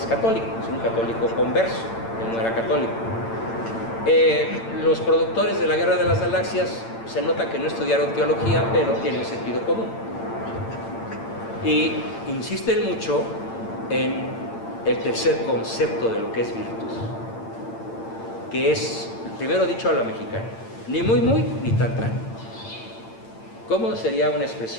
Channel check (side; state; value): right; late; 8.9 ms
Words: católico, es un católico converso, él no era católico. Los productores de La Guerra de las Galaxias se nota que no estudiaron teología, pero tienen sentido común. Y insisten mucho en el tercer concepto de lo que es virtud, que es, primero dicho a la mexicana, ni muy muy, ni tan tan. ¿Cómo sería una